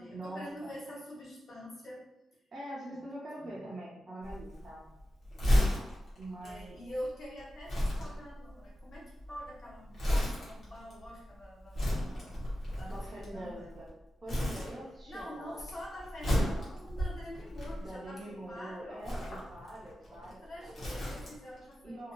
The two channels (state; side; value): normal; both; correlation 0.93